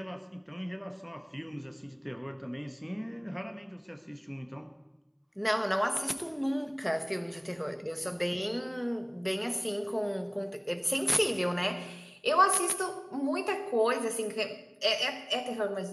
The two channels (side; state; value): both; identical; correlation 1.00